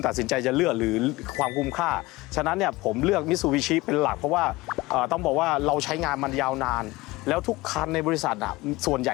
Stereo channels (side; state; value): right; quieter; 20.5 dB